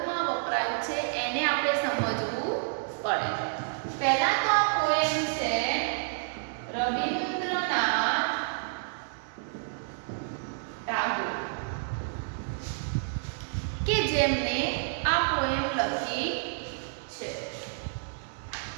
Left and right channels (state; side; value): silent; left; 58 dB below the other